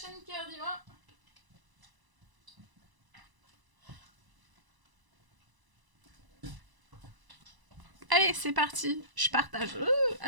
Cœur Divin. Allez, c'est parti. Je partage.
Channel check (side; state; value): left; late; 1.0 ms